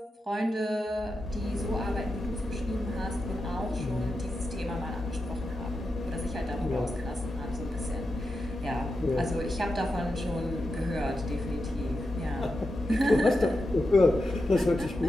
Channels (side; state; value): both; normal; correlation 0.88